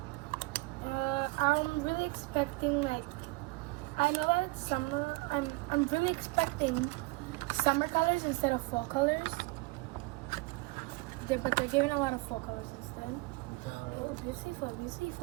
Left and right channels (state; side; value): quieter; left; 23.5 dB